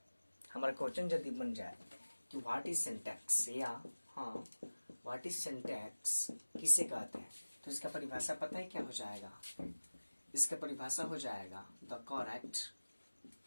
हमारा क्वेश्चन यदि बन जाए कि व्हाट इज सिंटैक्स, या हाँ व्हाट इज सिंटैक्स किसे कहते हैं, तो इसका परिभाषा पता है क्या हो जाएगा? इसका परिभाषा हो जाएगा the correct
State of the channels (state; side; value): inverted; both; correlation -1.00